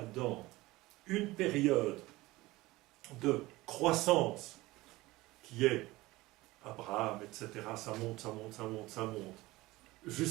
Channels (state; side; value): quieter; left; 19.6 dB